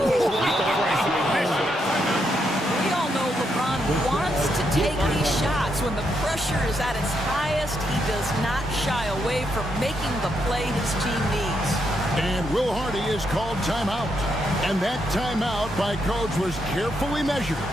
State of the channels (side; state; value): both; normal; correlation 0.79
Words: all know LeBron wants to take these shots. When the pressure is at its highest, he does not shy away from making the play his team needs. And Will Hardy is called timeout. And that timeout by coach was carefully measured,